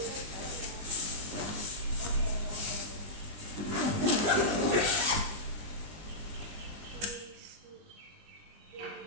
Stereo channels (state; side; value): late; left; 20 ms